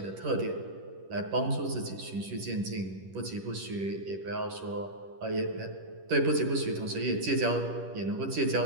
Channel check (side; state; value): left; late; 10 ms